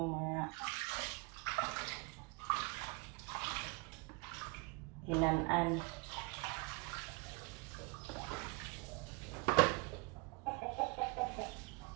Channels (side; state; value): left; quieter; 29.8 dB